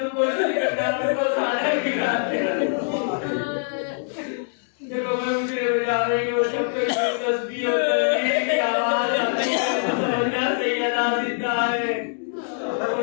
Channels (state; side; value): silent; right; digital silence